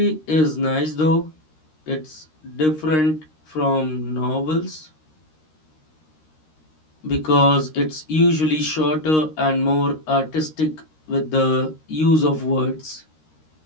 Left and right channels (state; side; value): late; right; 13 ms